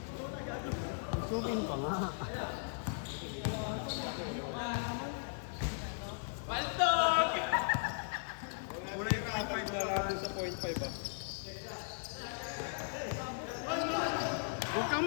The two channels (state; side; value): silent; right; 53 dB below the other